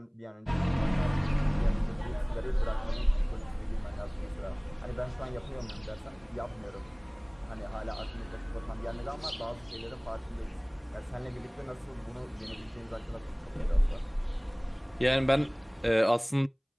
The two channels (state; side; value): identical; both; correlation 1.00